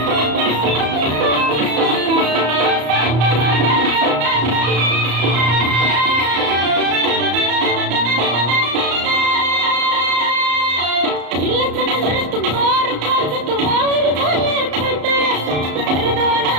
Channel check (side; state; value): left; late; 34 ms